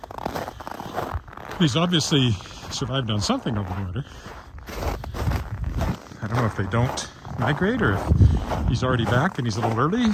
He's obviously survived on something over the winter. I don't know if they don't migrate, or if he's already back and he's a little early.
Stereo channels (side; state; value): both; identical; correlation 1.00